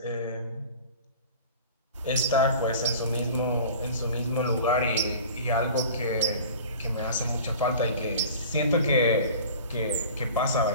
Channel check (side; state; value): both; inverted; correlation -0.41